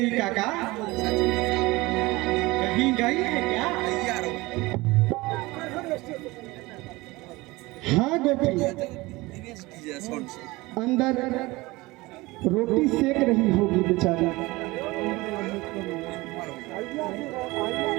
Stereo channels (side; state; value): left; quieter; 21.5 dB